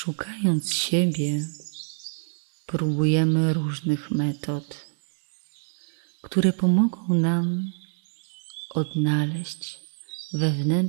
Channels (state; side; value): silent; left; digital silence